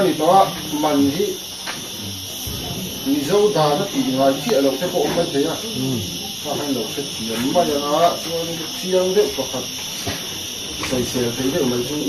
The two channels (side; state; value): both; identical; correlation 1.00